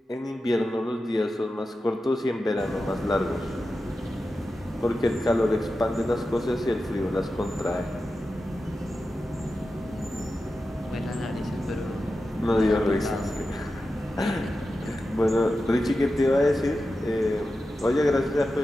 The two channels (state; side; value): normal; both; correlation 0.92